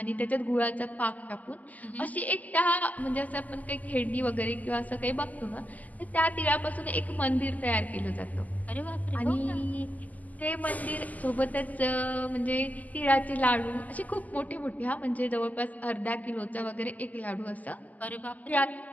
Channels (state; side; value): late; right; 0.078 ms